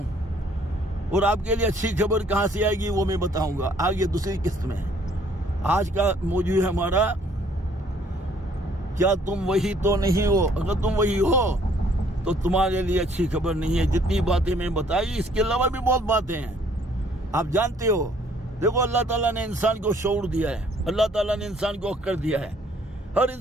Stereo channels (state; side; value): normal; both; correlation 0.61